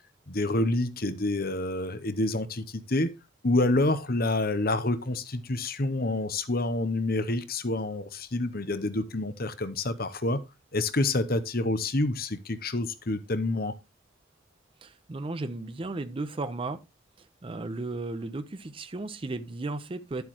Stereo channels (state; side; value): normal; both; correlation 0.51